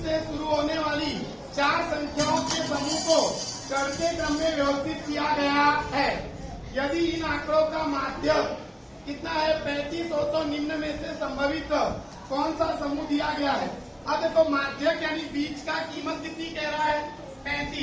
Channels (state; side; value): identical; both; correlation 1.00